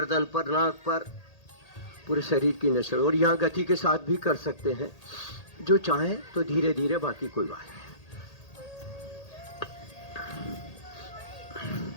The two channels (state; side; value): late; right; 1.8 ms